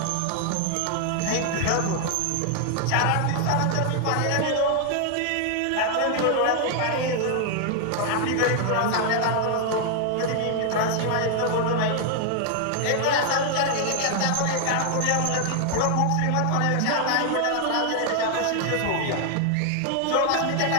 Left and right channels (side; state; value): both; different; correlation 0.00